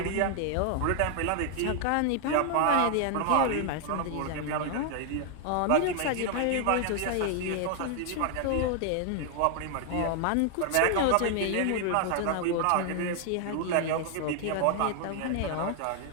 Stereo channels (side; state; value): both; different; correlation 0.00